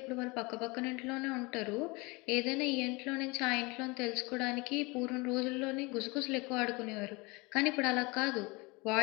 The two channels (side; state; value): right; quieter; 26.1 dB